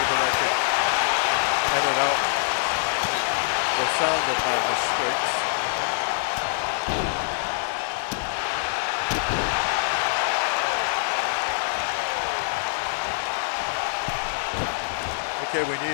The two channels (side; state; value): right; silent; 62 dB below the other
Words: that I could edit out the sound of my mistakes. Okay, we